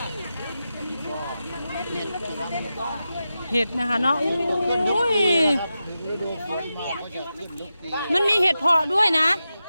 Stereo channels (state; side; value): inverted; both; correlation -0.91